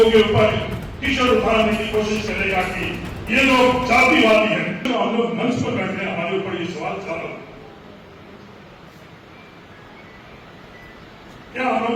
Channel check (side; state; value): both; identical; correlation 1.00